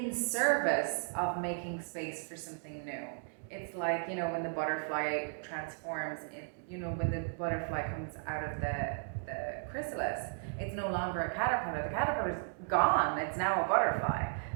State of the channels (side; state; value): left; silent; digital silence